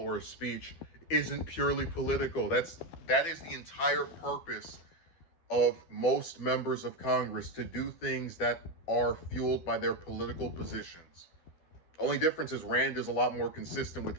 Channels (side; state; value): right; late; 12 ms